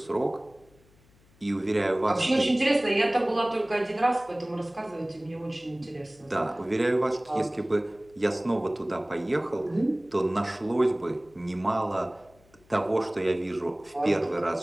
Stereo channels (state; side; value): noise; left; hum, 30 dB below the sound